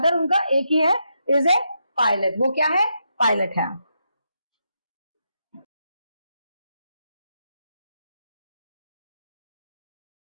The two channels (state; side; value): inverted; both; correlation -0.82